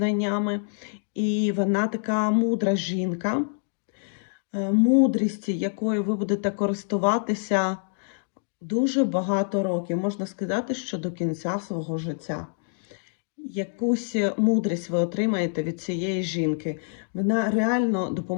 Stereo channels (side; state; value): right; silent; digital silence